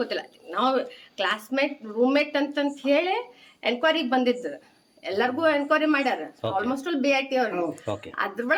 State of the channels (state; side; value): identical; both; correlation 1.00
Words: ಗೊತ್ತಿಲ್ಲ. ನಾವು ಕ್ಲಾಸ್ಮೇಟ್ ರೂಮ್ಮೇಟ್ ಅಂತಂತ ಹೇಳಿ ಎನ್ಕ್ವೈರಿಗೆ ಬಂದಿದ್ದು, ಎಲ್ಲರಿಗೂ ಎನ್ಕ್ವೈರಿ ಮಾಡ್ಯಾರ. ಆಲ್ಮೋಸ್ಟ್ ಆಲ್ BIT ಅವ್ರು.